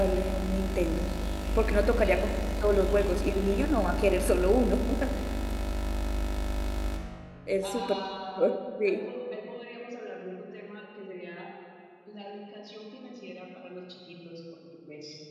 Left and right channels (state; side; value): identical; both; correlation 1.00